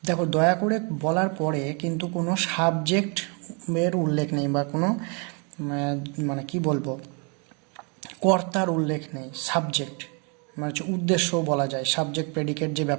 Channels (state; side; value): quieter; left; 35.1 dB